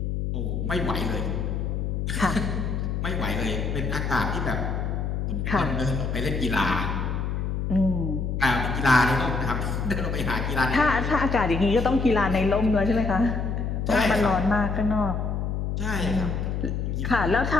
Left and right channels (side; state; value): left; noise; hum, 1 dB below the sound